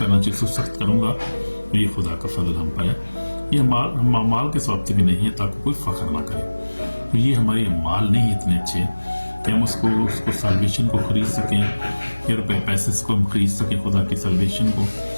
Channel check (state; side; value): inverted; both; correlation -1.00